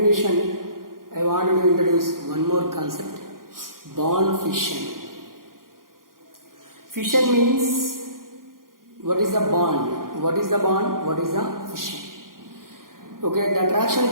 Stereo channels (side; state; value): left; late; 0.91 ms